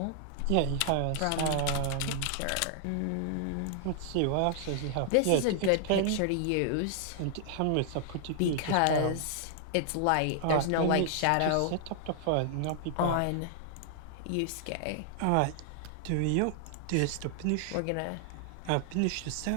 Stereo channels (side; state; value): both; different; correlation 0.00